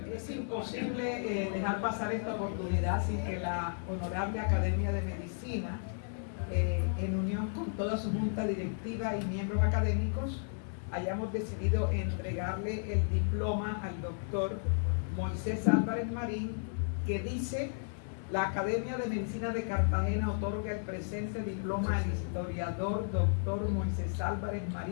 Es imposible dejar pasar esta oportunidad sin que la Honorable Academia de Medicina, en unión con toda su junta directiva y miembros académicos, hayamos decidido entregarle el diploma al doctor Moisés Álvarez Marín, que dice: la Academia de Medicina de Cartagena otorga el presente diploma al historiador doctor Moisés Álvarez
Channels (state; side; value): silent; right; digital silence